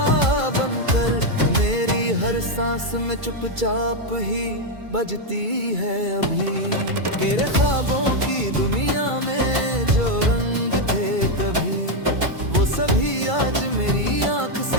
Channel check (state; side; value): late; left; 2.3 ms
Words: बनकर मेरी हर सांस में चुपचाप ही बजती है अभी। तेरे ख्वाबों की दुनिया में जो रंग थे कभी, वो सभी आज मेरी आंख